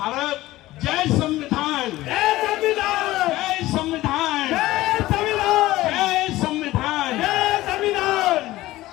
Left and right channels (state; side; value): quieter; right; 17.0 dB